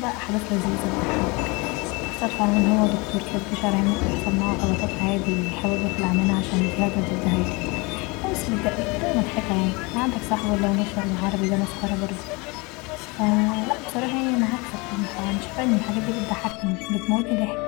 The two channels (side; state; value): right; quieter; 26.9 dB